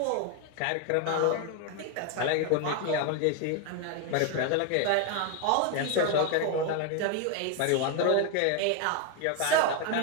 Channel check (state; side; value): different; both; correlation 0.01